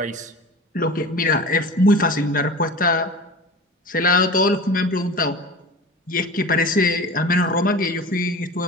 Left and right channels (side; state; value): both; normal; correlation 0.35